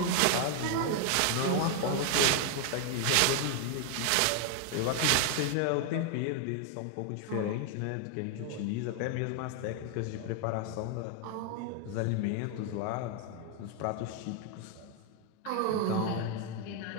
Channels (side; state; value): both; different; correlation 0.00